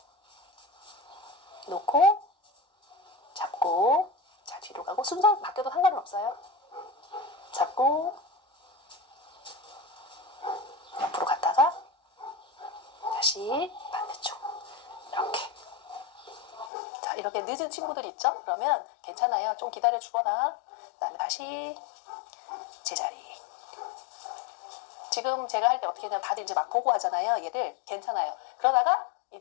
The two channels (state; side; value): drops out; right; at 16.7 s